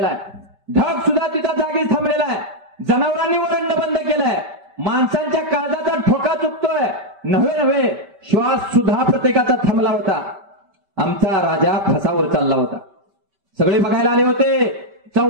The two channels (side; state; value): left; late; 5.2 ms